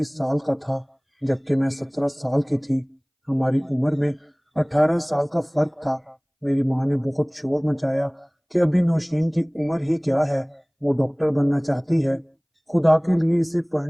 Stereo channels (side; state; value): both; identical; correlation 1.00